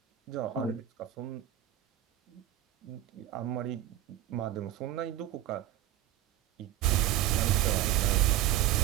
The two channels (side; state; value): left; quieter; 13.1 dB